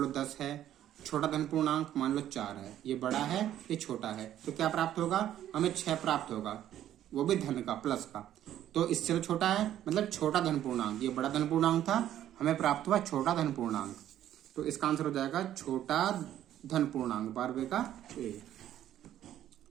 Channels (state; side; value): quieter; left; 11.7 dB